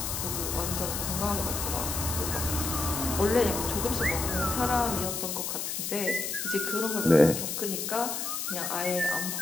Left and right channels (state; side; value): noise; left; hiss, 3 dB below the sound